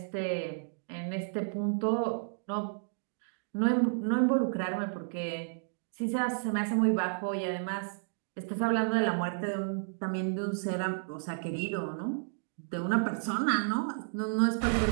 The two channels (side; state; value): left; silent; digital silence